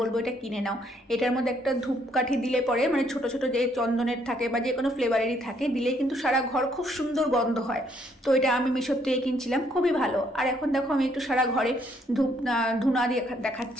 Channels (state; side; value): normal; both; correlation 0.69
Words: এটা কিনে নাও। এটার মধ্যে একটা ধূপকাঠি দিলে পরে, মানে ছোট ছোট যে চন্দনের থাকে বা যে কোনো ফ্লেভারেরই থাকে, দিলে কিন্তু সারা ঘর খুব সুন্দর গন্ধ হয়। তো এটা আমি মিশোর থেকে কিনছিলাম, খুবই ভালো। আর এখন দেখো আমি একটু সারা ঘরে ধুনা দিয়ে